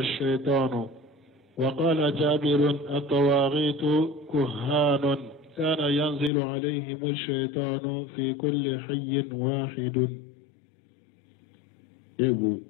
وقال جابر الطواغيت كهان كان ينزل عليهم الشيطان في كل حي واحد ego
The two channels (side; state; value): right; drops out; at 6.3 s